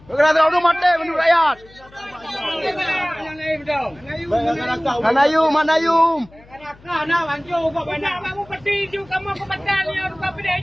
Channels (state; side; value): noise; left; hum, 25 dB below the sound